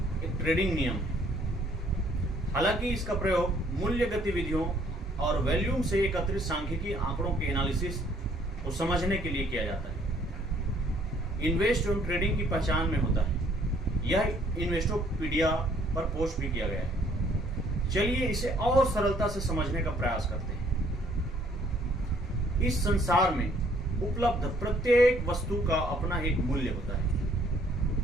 एक ट्रेडिंग नियम है। हालांकि इसका प्रयोग मूल्य गतिविधियों और वॉल्यूम से एकत्रित सांख्यिकीय आंकड़ों के एनालिसिस को समझने के लिए किया जाता है। इन्वेस्ट एवं ट्रेडिंग की पहचान में होता है। यह इन्वेस्टोपीडिया पर पोस्ट भी किया गया है। चलिए इसे और सरलता से समझने का प्रयास करते हैं। इस संसार में उपलब्ध प्रत्येक वस्तु का अपना एक मूल्य होता है।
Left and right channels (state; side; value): normal; both; correlation 0.63